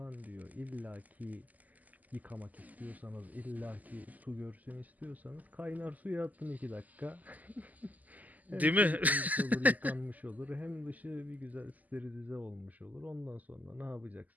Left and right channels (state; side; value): late; left; 0.079 ms